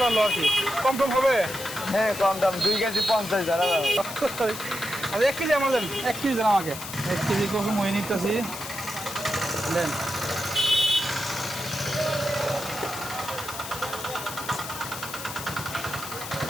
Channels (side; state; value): left; noise; hiss, 10 dB below the sound